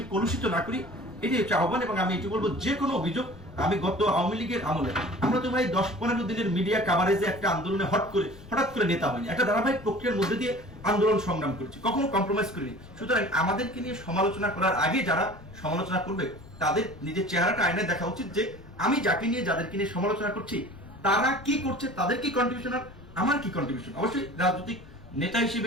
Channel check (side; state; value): left; noise; rumble, 20 dB below the sound